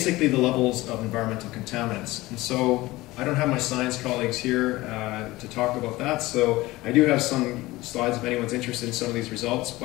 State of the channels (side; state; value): right; quieter; 19.2 dB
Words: the levels of environmental contaminants. And so I don't have my science colleagues here to talk about that, so I do have some slides if anyone's interested in some of these results,